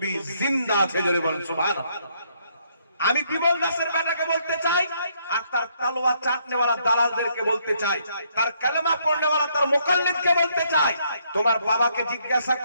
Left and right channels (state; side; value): inverted; both; correlation -0.71